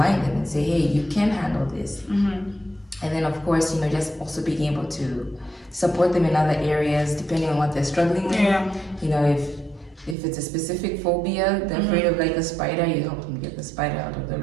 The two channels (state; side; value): drops out; left; at 10.2 s